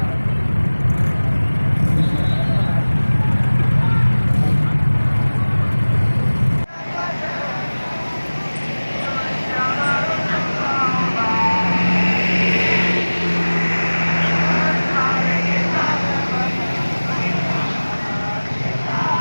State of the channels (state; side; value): inverted; both; correlation -1.00